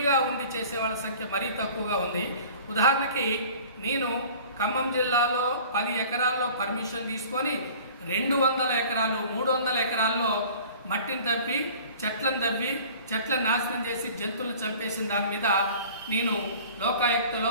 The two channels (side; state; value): both; inverted; correlation -0.46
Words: ఉండి చేసేవాళ్ళ సంఖ్య మరీ తక్కువగా ఉంది. ఉదాహరణకి నేను ఖమ్మం జిల్లాలో 10 ఎకరాల్లో పర్మిషన్ తీసుకొని 200 ఎకరాలు 300 ఎకరాల్లో మట్టిని తవ్వి చెట్లను నాశనం చేసి జంతువులను చంపేసిన దాని మీద నేను